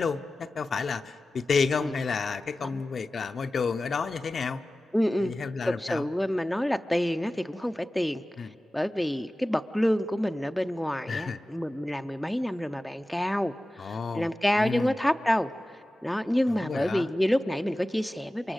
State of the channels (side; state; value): both; normal; correlation 0.96